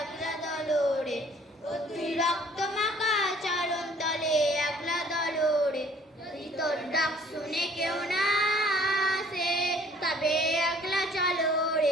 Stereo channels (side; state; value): both; normal; correlation 0.57